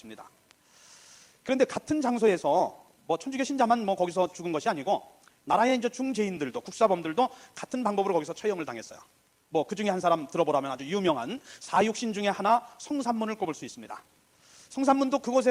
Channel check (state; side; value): identical; both; correlation 1.00